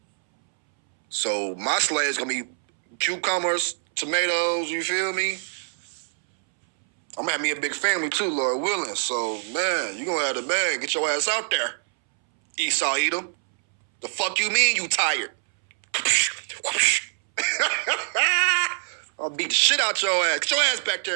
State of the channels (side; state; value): left; silent; 62 dB below the other